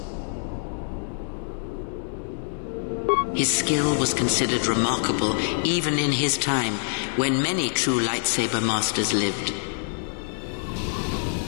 His skill was considered remarkable even in his time, when many true lightsaber masters lived.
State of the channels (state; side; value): silent; right; 61 dB below the other